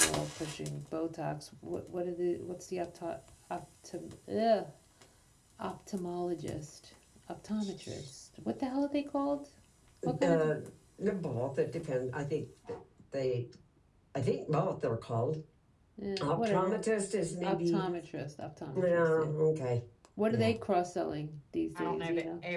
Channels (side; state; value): both; identical; correlation 1.00